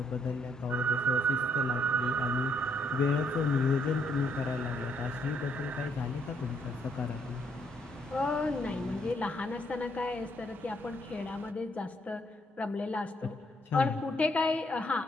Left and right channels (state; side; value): normal; both; correlation 0.72